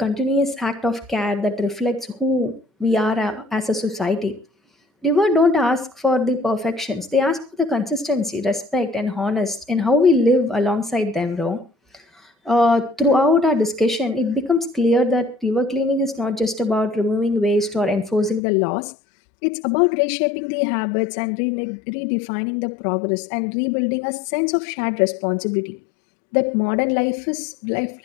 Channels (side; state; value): right; drops out; at 18.4 s